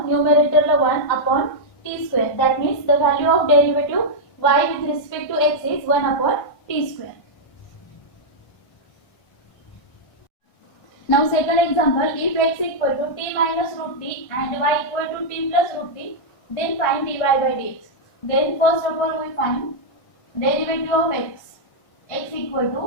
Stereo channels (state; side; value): late; right; 1.6 ms